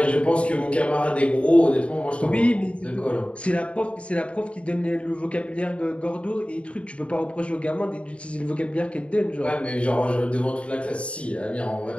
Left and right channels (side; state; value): right; late; 0.061 ms